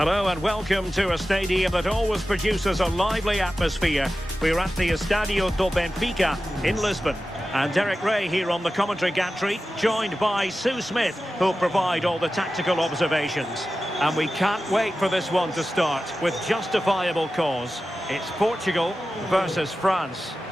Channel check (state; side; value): normal; both; correlation 0.94